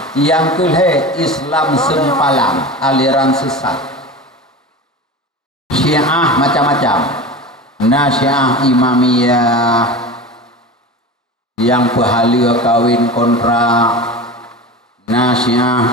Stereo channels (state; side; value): normal; both; correlation 0.30